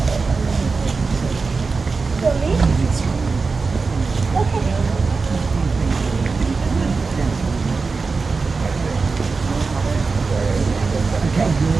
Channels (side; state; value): left; quieter; 4.4 dB